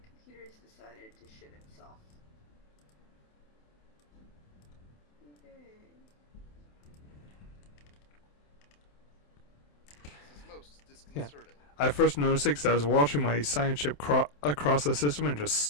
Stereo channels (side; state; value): right; late; 27 ms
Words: computer's decided to shit itself. Okay. This is most disconcerting. I first noticed it because I was watching my science ship across the system and just